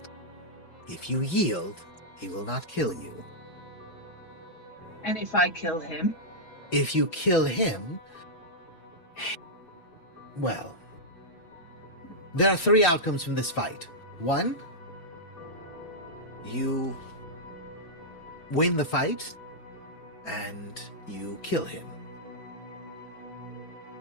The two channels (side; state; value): right; late; 5.7 ms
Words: If you yield, he will not kill you. And if I kill him? If you kill him, well, there are 3 outcomes from this fight. 1, you win the fight, and you kill him.